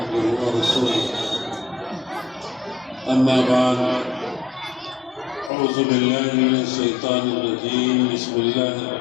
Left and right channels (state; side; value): drops out; right; at 5.5 s